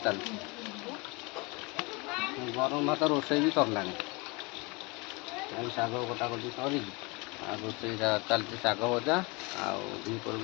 चलती गरम भात रोषे भी सरला शाग कटाकटी सर रोषे चलती शाग भजा आपर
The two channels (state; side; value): quieter; right; 27.6 dB